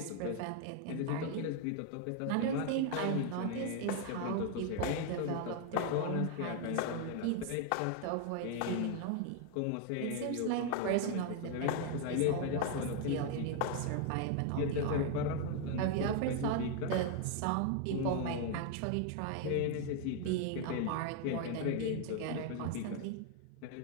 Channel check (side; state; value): both; different; correlation 0.01